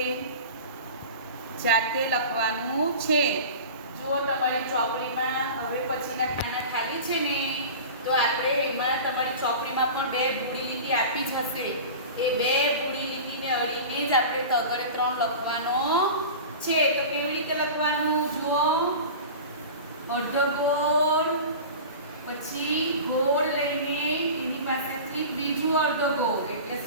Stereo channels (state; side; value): inverted; both; correlation -0.34